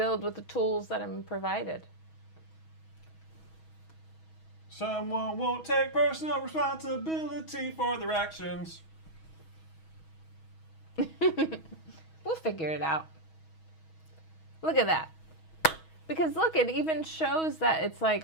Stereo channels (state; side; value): late; right; 6.3 ms